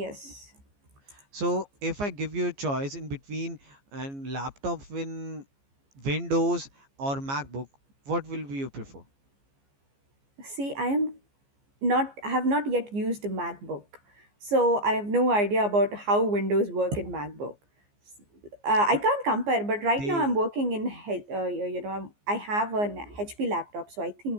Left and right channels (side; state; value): left; late; 15 ms